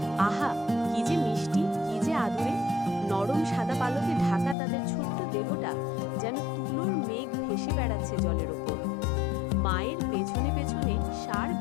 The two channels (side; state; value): right; drops out; at 4.5 s